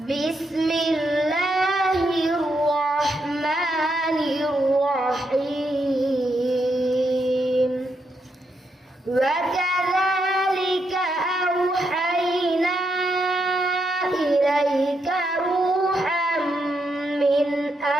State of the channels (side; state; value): both; normal; correlation 0.81